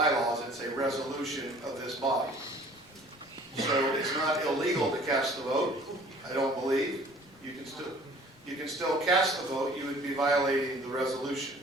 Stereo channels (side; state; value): left; noise; rumble, 30 dB below the sound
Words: it's a resolution of this body. So it's not illegal to cast the vote, I don't believe. You can still cast the vote, you would be violating the resolution.